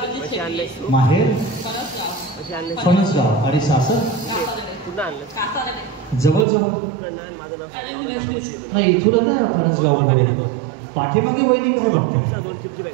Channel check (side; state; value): left; drops out; at 6.5 s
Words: कशी शेट्टी, आणलंयस तू? माहेर फणसगाव, कशी आणलंयस? फणसगाव. आणि सासर? कासारडे. पुन्हा आणलं कासारडे. जवळ जवळ इकडनं आण, माझं नाव सांग. नाही. इथून ना फणसगाव. पाठीमागे वहिनी काय बघते? 2 चिपची